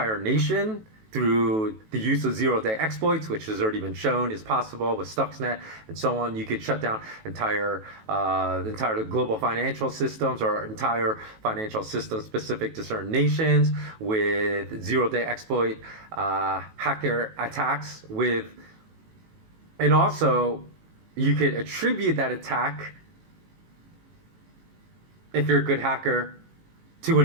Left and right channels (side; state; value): left; late; 18 ms